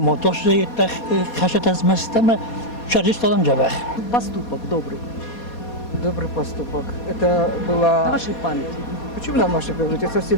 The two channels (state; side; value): late; right; 4.2 ms